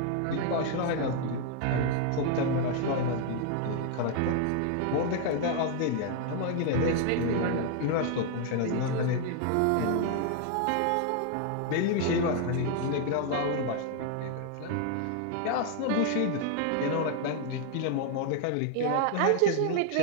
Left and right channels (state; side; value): different; both; correlation 0.00